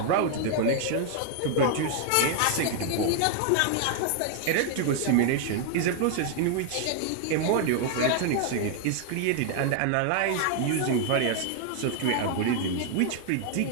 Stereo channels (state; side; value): different; both; correlation 0.00